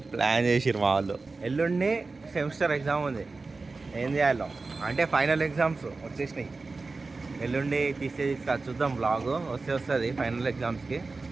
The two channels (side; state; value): left; quieter; 3.8 dB